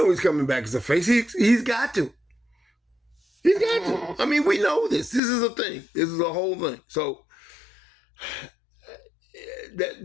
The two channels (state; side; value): drops out; right; at 5.2 s